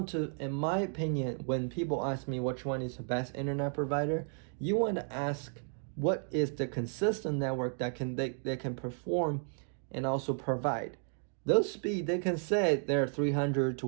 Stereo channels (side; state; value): left; silent; 56 dB below the other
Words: to, in my opinion, when people ask me which one is the best internet provider, you want to ask what is the consistent network that they can perform and also provide. Those speed, they can say they're 300 to